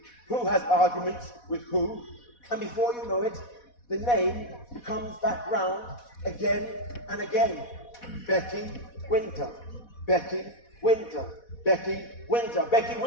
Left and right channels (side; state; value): right; late; 4.1 ms